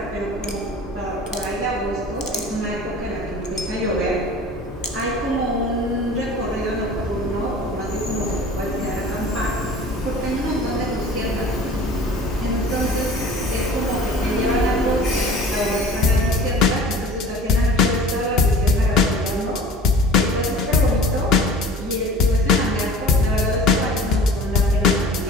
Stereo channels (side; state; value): both; normal; correlation 0.43